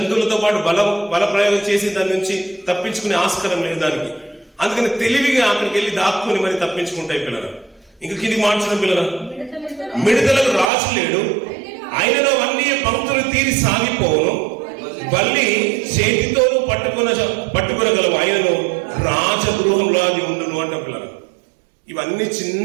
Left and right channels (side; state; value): left; drops out; at 10.7 s